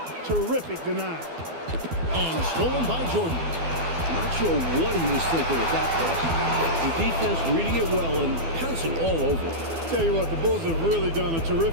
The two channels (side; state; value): left; late; 12 ms